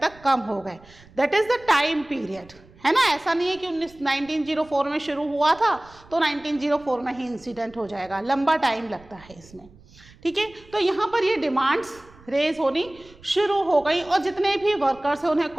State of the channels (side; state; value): right; noise; rumble, 25 dB below the sound